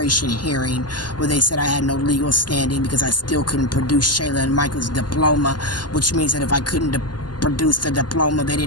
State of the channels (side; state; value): right; late; 0.70 ms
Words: hearing where they said I had no legal standing because I still couldn't produce Shayla and Michael's diploma, which means that if I couldn't produce the diploma, they